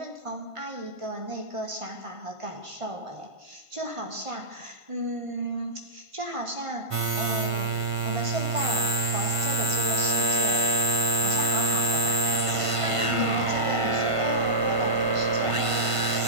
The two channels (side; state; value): left; late; 1.5 ms